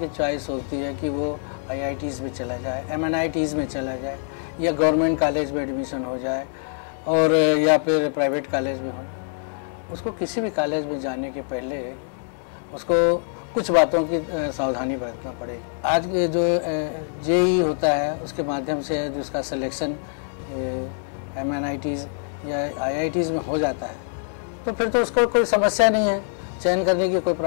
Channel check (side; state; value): right; silent; digital silence